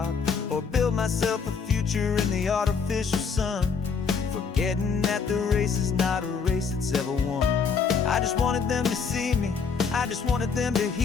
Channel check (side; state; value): right; quieter; 5.7 dB